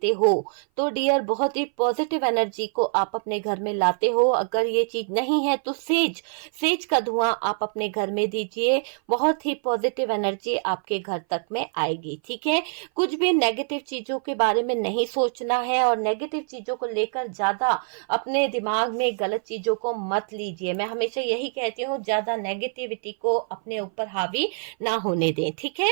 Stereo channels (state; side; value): silent; left; 58 dB below the other